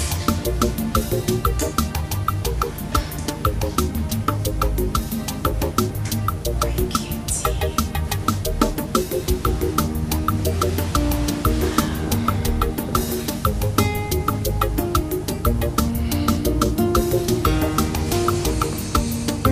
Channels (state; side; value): identical; both; correlation 1.00